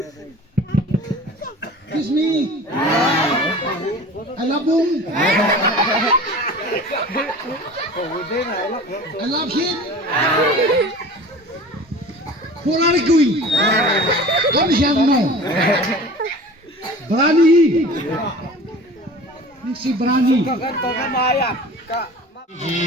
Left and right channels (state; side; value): normal; both; correlation 0.40